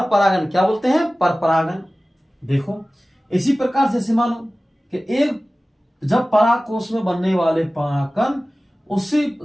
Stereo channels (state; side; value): normal; both; correlation 0.97